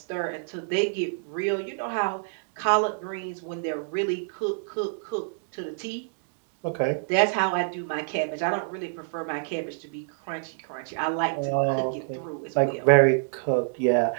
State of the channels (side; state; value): left; silent; digital silence